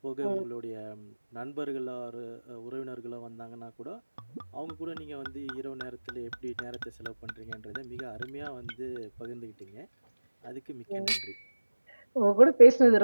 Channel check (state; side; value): inverted; both; correlation -1.00